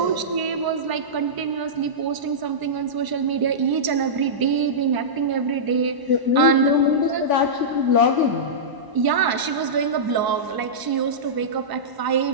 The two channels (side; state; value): left; late; 1.0 ms